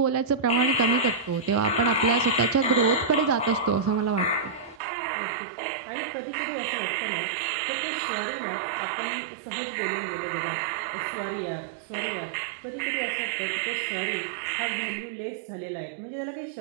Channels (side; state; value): left; drops out; at 4.8 s